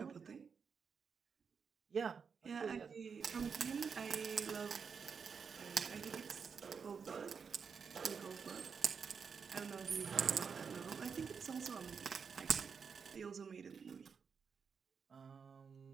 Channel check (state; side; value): quieter; left; 6.1 dB